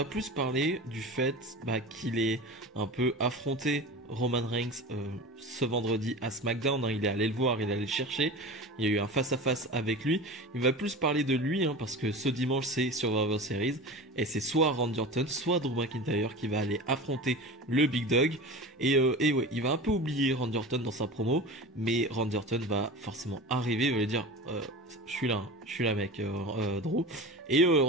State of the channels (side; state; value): both; normal; correlation 0.32